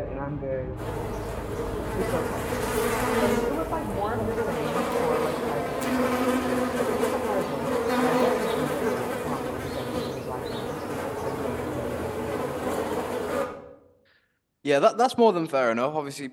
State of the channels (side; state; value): both; identical; correlation 1.00